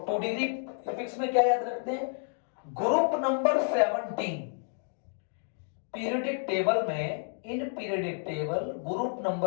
2 डिग्री प्रीफिक्स में क्या याद रखते हैं? ग्रुप नंबर 17 पीरियोडिक टेबल में, in periodic table group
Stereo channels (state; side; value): silent; right; digital silence